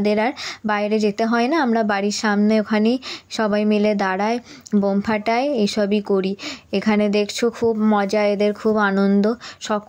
আর বাইরে যেতে হয় না। আমরা বাড়ির সামনে ওখানেই সবাই মিলে দাঁড়ায়, বোম ফাটায়, এসবই করি। এখানে দেখছো খুব মজা, এদের খুব আনন্দ,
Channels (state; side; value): identical; both; correlation 1.00